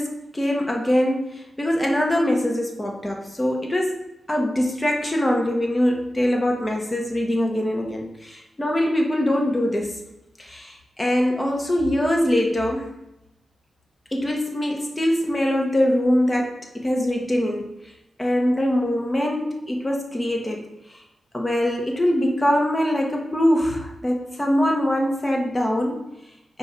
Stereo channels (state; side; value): normal; both; correlation 0.94